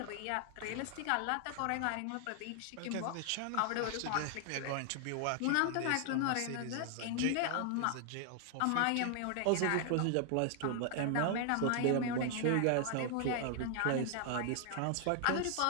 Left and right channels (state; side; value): different; both; correlation 0.00